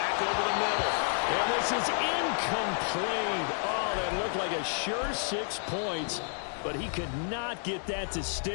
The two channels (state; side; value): silent; right; digital silence